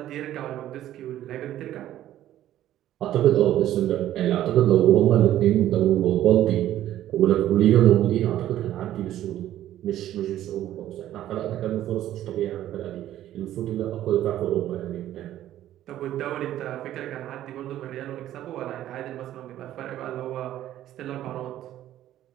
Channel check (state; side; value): quieter; left; 12.8 dB